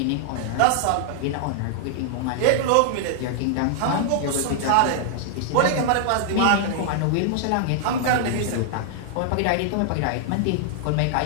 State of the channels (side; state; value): both; different; correlation -0.01